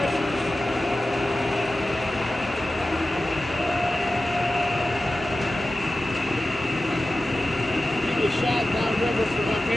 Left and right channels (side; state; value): both; normal; correlation 0.94